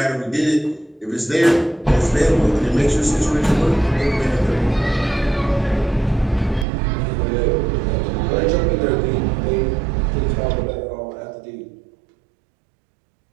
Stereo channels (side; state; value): left; drops out; at 6.7 s